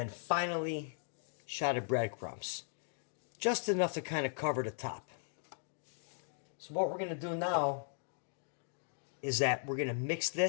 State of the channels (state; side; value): silent; right; digital silence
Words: finally, a shot of breadcrumbs. Just enough to kind of cover the top. So what we're going to do now is that we're going to mix